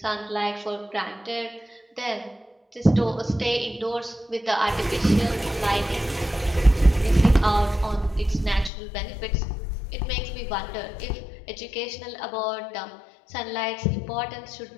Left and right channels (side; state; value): right; drops out; at 8.7 s